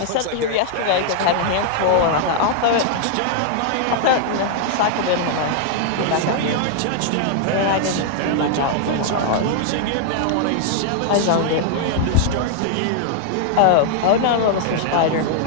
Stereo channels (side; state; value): both; different; correlation -0.01